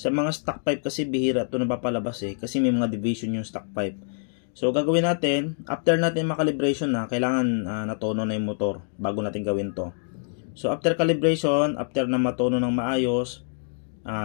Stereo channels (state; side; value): silent; right; digital silence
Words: mga stock pipe kasi bihira ito napapalabas kasi may mga division yung stock pipe. So, gagawin natin, after natin makalibration na, kailangan natono na yung motor bago natin gawin to. So, after calibration, after na matono ng maayos,